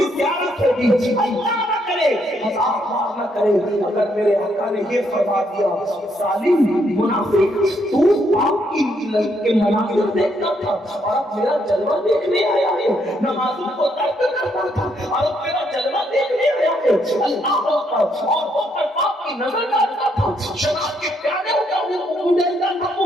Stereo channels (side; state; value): both; normal; correlation 0.74